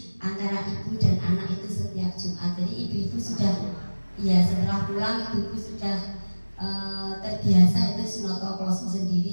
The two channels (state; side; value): inverted; both; correlation -1.00